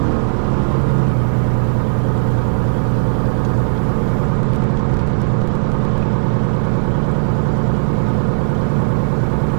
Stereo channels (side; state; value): left; silent; digital silence